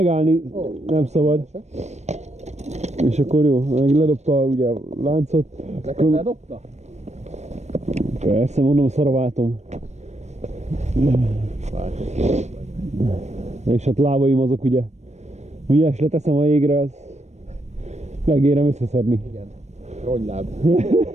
nem szabad. És akkor jó, meg ledobta ugye a láncot. Neked ledobta? Persze, mondom, szaraváltom. És hát lábaim azok ugye, ügyes leteszem a jégre, az megérem összeszedni. Igen. Rogyláb.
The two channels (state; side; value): late; left; 0.32 ms